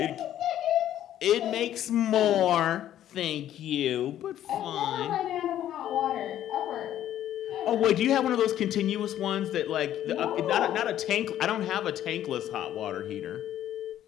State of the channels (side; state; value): right; quieter; 11.8 dB